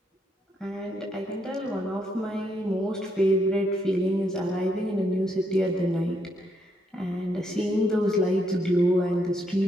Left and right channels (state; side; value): normal; both; correlation 0.76